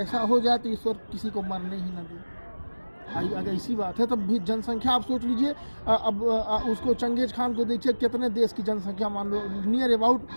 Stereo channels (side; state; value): both; inverted; correlation -1.00